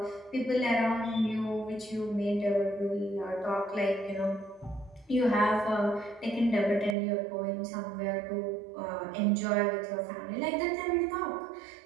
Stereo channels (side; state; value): left; drops out; at 7.0 s